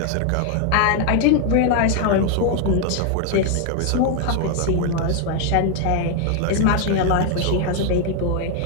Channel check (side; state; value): both; different; correlation 0.00